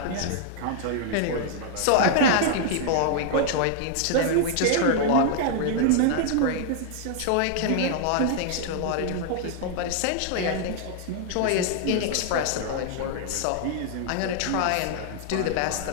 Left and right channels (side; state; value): both; different; correlation 0.00